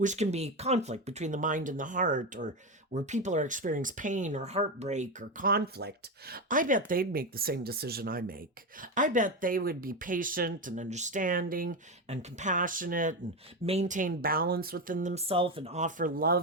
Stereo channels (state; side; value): normal; both; correlation 0.15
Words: can be conflict between the mind and the heart, or where people are experiencing pain or heartbreak or conflict. I bet they'd make the same decision I make. I bet they would be patient and understanding and compassionate and maintain balance within themselves and offer